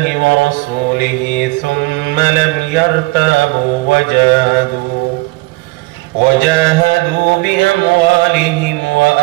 ورسوله ثم لم يرتابوا وجاهدوا بأموالهم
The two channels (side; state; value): left; quieter; 23.2 dB